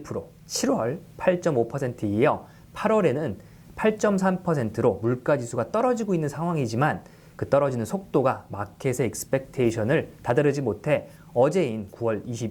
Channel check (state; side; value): identical; both; correlation 1.00